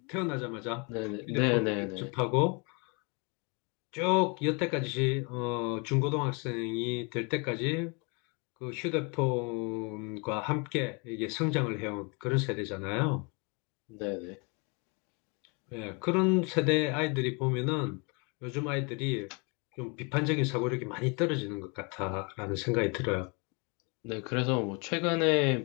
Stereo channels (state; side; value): quieter; right; 32.4 dB